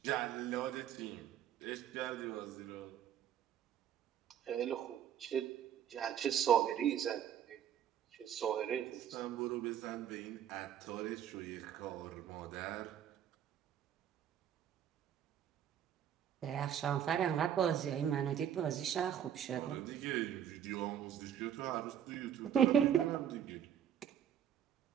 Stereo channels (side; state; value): left; quieter; 9.5 dB